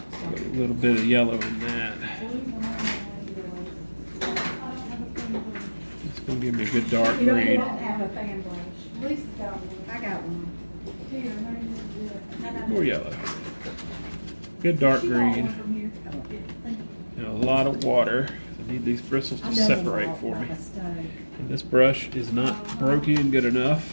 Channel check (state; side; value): inverted; both; correlation -1.00